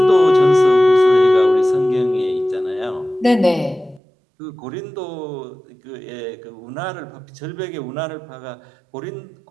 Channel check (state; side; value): drops out; left; at 4.0 s